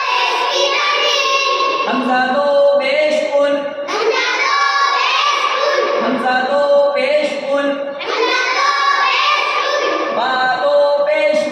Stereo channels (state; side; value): identical; both; correlation 1.00